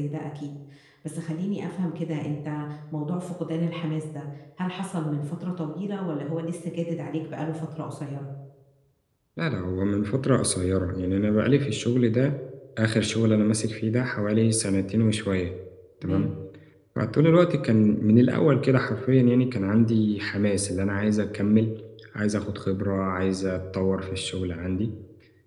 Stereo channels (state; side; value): identical; both; correlation 1.00